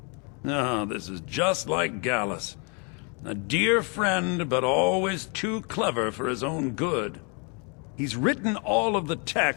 Oh, this is just like Gallus. A dear friend, but always too clever for his own good. He's written all of the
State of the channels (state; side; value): quieter; right; 35.6 dB